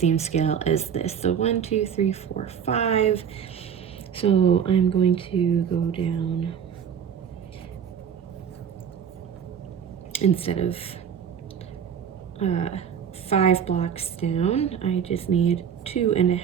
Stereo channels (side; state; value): left; quieter; 8.0 dB